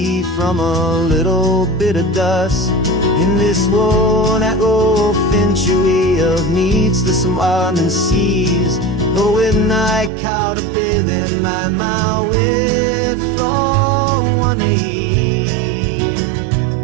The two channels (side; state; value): left; drops out; at 10.1 s